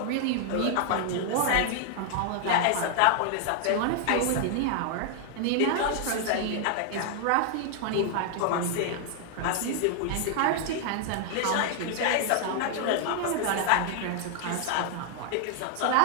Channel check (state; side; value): different; both; correlation 0.00